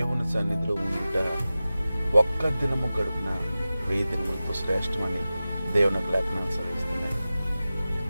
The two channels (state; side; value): inverted; both; correlation -0.95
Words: సన్నిధిలో ఉండుట ఒక్క దినము గడుపున 1000 దినములతో శ్రేష్టమని దేవుని లేఖనాలు సెలవిస్తున్నాయి.